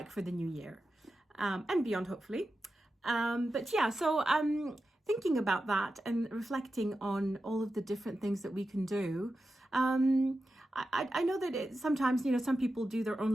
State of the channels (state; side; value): normal; both; correlation 0.91